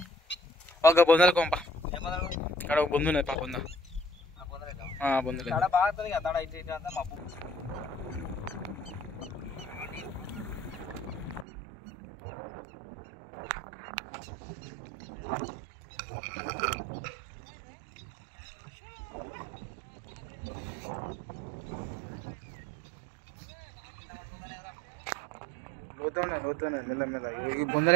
ఒక బొందల కొంప ఇక్కడ ఒక బొందు ఉన్నది. బొంద బొందలు తడ బాగా తనిగా, తడ ఇటు అంతా మబ్బు. లోతున్నా మెల్ల ఈ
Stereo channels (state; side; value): drops out; left; at 11.5 s